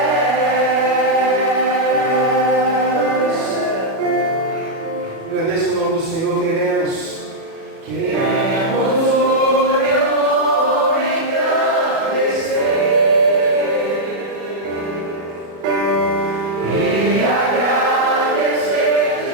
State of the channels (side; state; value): left; late; 37 ms